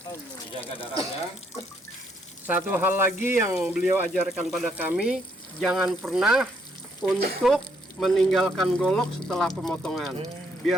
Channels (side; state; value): both; normal; correlation 0.72